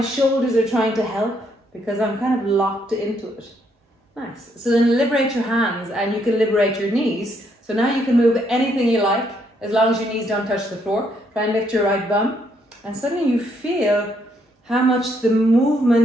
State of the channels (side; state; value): both; normal; correlation 0.73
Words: are trying to help because I'm kind of locked into it. Nice. So then liberate your hands, and you can liberate your knees. So now you can move anything you like as long as your knees don't touch the floor. Try and lift your right bum, and suddenly you feel how much the